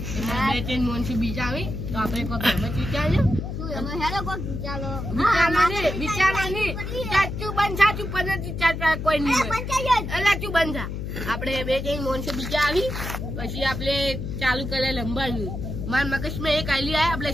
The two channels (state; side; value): noise; left; hum, 5 dB below the sound